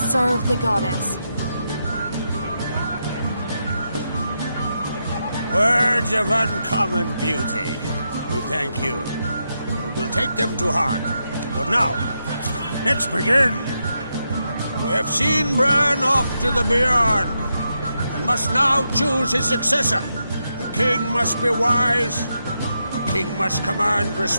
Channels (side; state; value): both; inverted; correlation -0.84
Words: the goddess. Words of uncommon beauty. We thank you. And we'll take them to heart. But now, let's begin. We have seen Bran off to the Beyond, and must now choose his successor. A king must be wise. A king must command